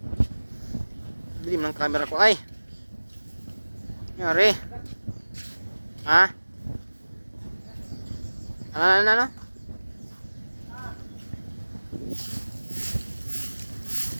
Dilim ng camera ko ay. Yari. Ha? Ano?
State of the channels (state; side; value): inverted; both; correlation -1.00